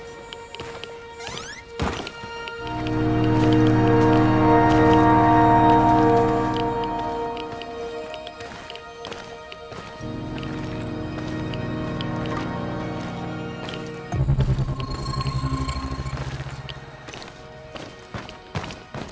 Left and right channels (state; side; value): identical; both; correlation 1.00